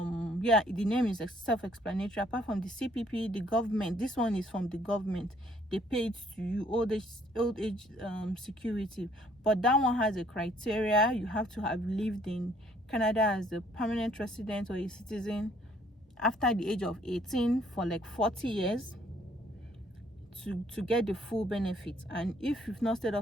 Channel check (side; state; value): both; normal; correlation 0.63